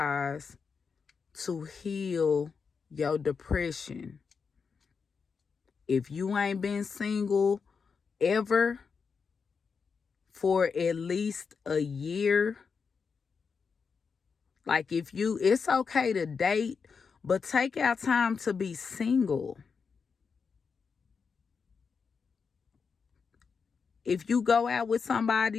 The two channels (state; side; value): quieter; right; 5.6 dB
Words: to heal your depression. If you ain't been single ever for at least a year, like it's okay to date, but take out time to be single. If you go out with